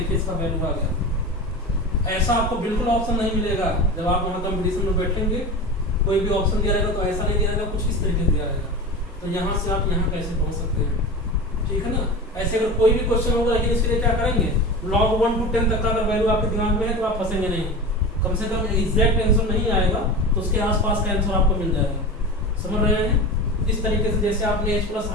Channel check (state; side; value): normal; both; correlation 0.29